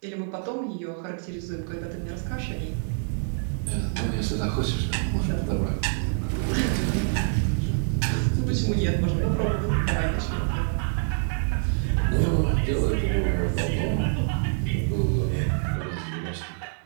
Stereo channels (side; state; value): left; silent; 61 dB below the other